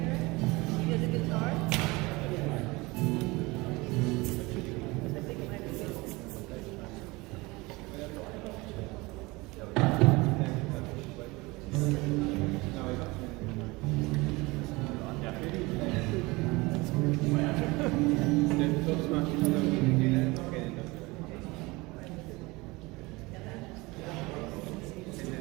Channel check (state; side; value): quieter; left; 23.3 dB